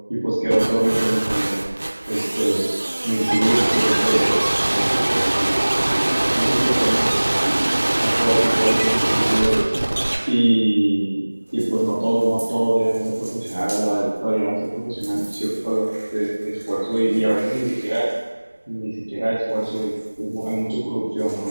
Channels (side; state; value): both; inverted; correlation -1.00